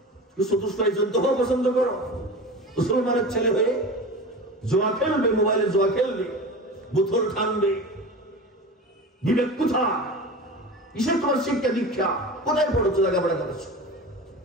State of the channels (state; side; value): normal; both; correlation 0.31